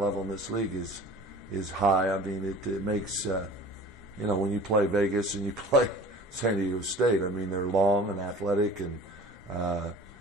in this league is high. I mean, it makes when you play Vegas and you play San Diego State, I mean, they're long and athletic, and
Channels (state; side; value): normal; both; correlation 0.44